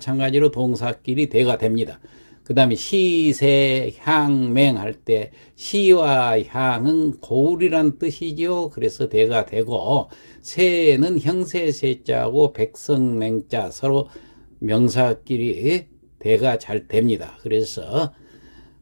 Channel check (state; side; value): inverted; both; correlation -1.00